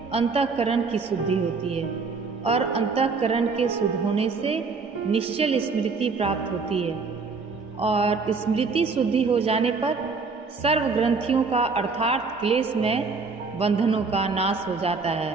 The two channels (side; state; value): left; quieter; 4.5 dB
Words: अंतःकरण की शुद्धि होती है और अंतःकरण के शुद्ध होने से निश्चल स्मृति प्राप्त होती है और स्मृति शुद्धि हो जाने पर सर्व ग्रंथियों का अर्थात क्लेश में बंधनों का नाश हो जाता है।